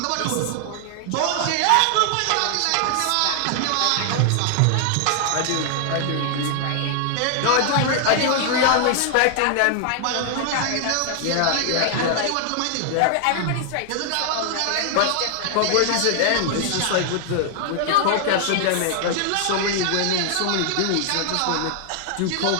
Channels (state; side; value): different; both; correlation 0.00